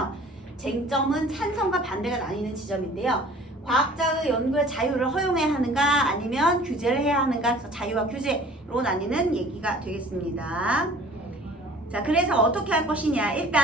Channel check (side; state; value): both; normal; correlation 0.48